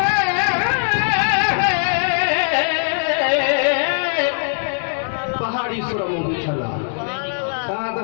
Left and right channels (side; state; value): right; silent; 66 dB below the other